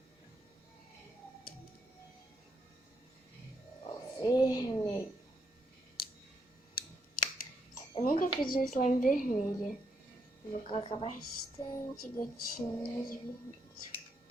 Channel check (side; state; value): both; normal; correlation 0.77